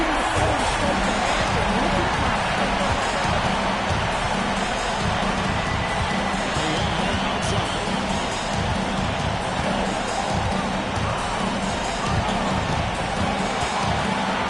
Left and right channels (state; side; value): identical; both; correlation 1.00